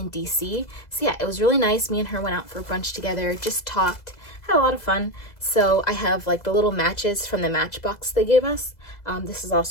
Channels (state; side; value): late; right; 2.0 ms